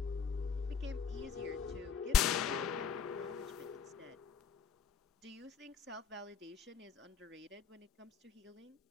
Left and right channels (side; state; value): right; quieter; 6.2 dB